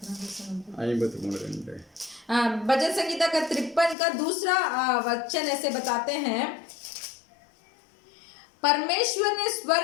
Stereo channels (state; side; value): drops out; right; at 4.0 s